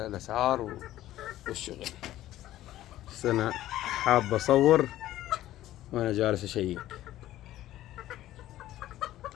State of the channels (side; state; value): right; quieter; 14.2 dB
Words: الاسعار والشغل. بس انا حاب اصور وانا جالس اشيك.